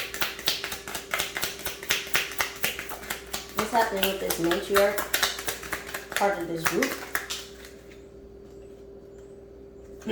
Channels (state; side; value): identical; both; correlation 1.00